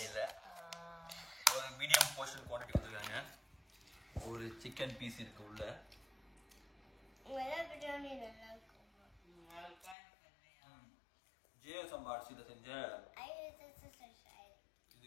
இல்ல. ஒரு மீடியம் போர்ஷன் குவாண்டிட்டி கொடுத்துருக்காங்க. ஒரு சிக்கன் பீஸ் இருக்கு உள்ள. ஜியோ சம்பா அரிசியில செஞ்ச இது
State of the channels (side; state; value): right; drops out; at 10.0 s